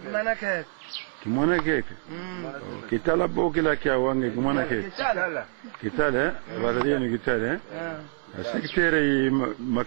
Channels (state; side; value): silent; left; digital silence